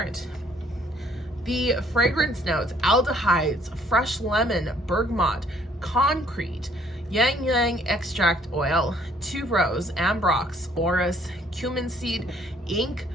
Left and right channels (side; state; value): both; normal; correlation 0.63